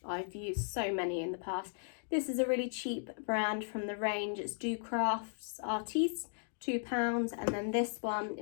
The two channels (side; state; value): right; silent; digital silence